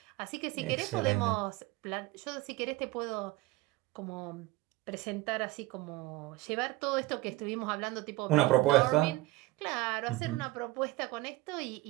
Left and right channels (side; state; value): left; quieter; 19.9 dB